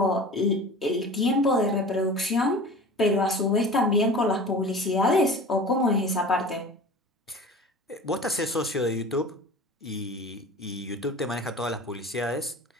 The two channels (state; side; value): normal; both; correlation 0.38